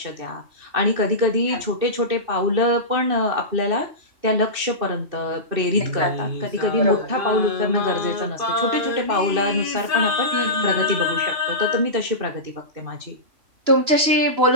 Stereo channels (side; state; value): left; late; 3.0 ms